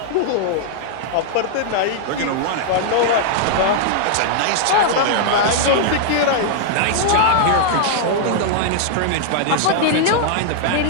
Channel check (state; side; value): different; both; correlation -0.01